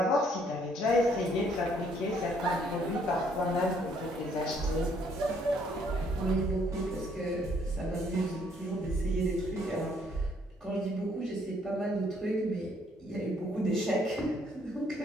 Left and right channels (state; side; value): normal; both; correlation 0.66